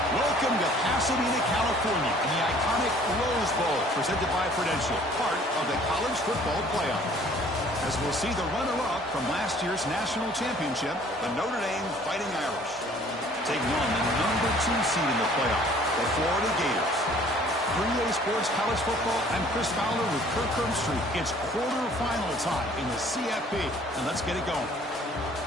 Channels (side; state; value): both; normal; correlation 0.55